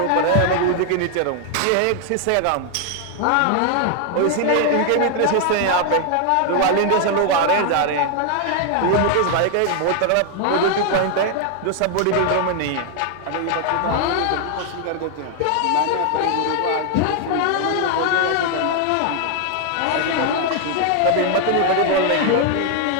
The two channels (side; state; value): both; different; correlation 0.00